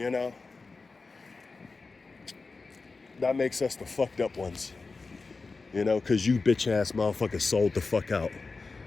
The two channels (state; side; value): quieter; right; 4.1 dB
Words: know. That makes us the fucked up ones. You know, because you bitch ass motherfuckers sold the fuck out.